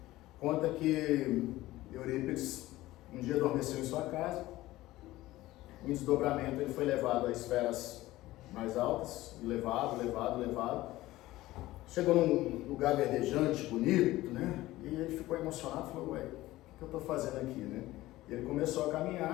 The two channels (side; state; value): right; quieter; 17.0 dB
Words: Conta que Eurípides um dia adormeceu em sua casa, em desdobramento ele foi levado a esferas mais altas, levado. Chegou num lugar verdejante, bonito, né? E ele ficou emocionado, falou, ué, o que eu estou fazendo aqui, né? E ele começou a